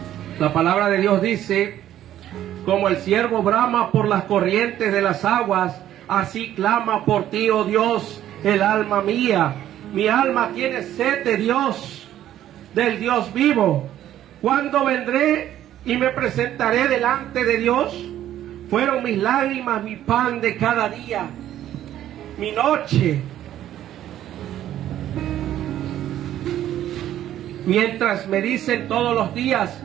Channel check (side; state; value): left; quieter; 12.1 dB